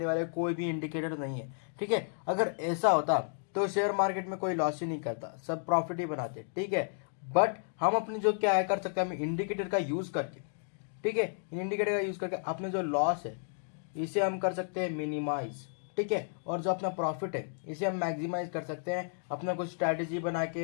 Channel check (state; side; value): silent; right; digital silence